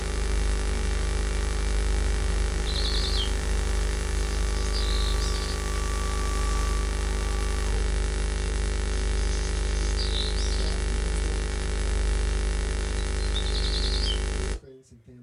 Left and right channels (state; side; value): identical; both; correlation 1.00